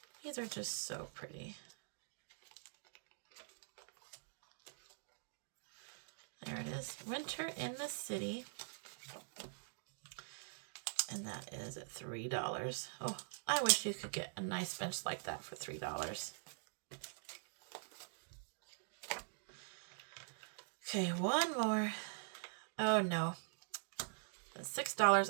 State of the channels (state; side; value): silent; left; digital silence